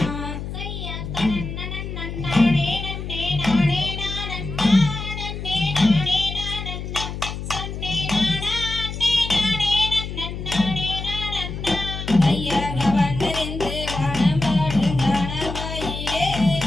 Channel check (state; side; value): noise; left; hum, 7 dB below the sound